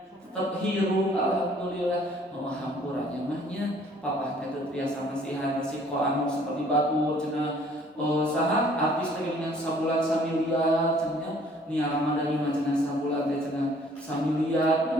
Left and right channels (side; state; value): both; normal; correlation 0.57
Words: tetep hirup alhamdulillah. Hampuranya mah nya papa teh teu biasa nasihat resiko anu seperti batu cenah saha artis teh dengan sabulan samiliar cenah niara dari mah cenah sabulan teh cenah samiliar.